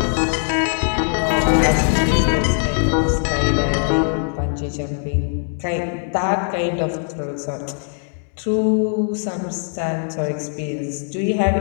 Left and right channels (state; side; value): silent; right; 65 dB below the other